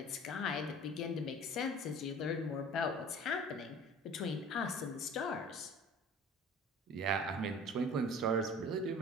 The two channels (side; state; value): both; normal; correlation 0.44